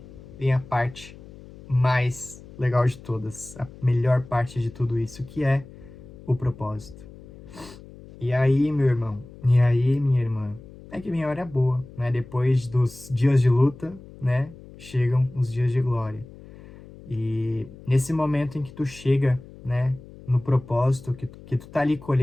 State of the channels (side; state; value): left; noise; hum, 19 dB below the sound